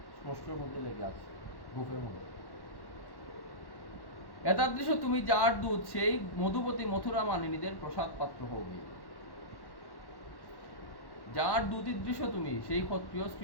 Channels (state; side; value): late; right; 1.1 ms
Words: স্পর্শের মধ্যে লেগে আছে, বুকের মধ্যে। এতাদৃশ তুমি যার দুধ, সেই মধুপতি মথুরা মানিনীদের প্রসাদ পাত্র হবে। যার দুতিদৃশ্য তুমি, সেই ক্ষত্রিয়